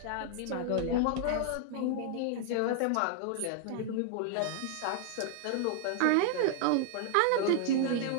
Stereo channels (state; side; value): different; both; correlation 0.00